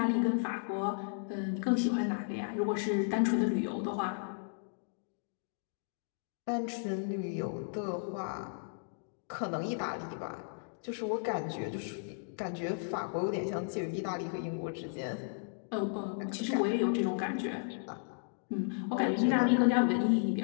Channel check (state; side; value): silent; right; digital silence